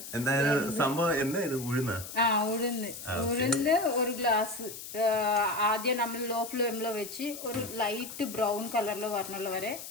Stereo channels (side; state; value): left; noise; hiss, 11 dB below the sound